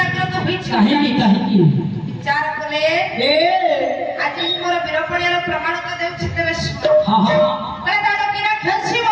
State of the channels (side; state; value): both; identical; correlation 1.00